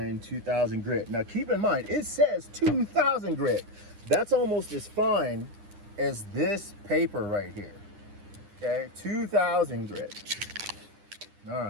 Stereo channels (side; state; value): left; late; 9.9 ms